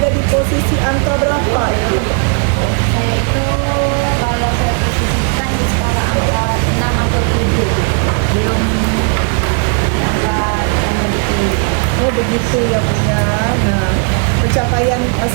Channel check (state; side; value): quieter; left; 38.5 dB